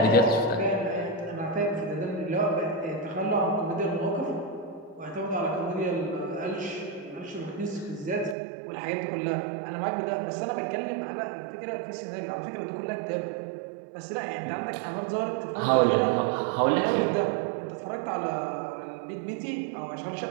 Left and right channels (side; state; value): left; drops out; at 8.3 s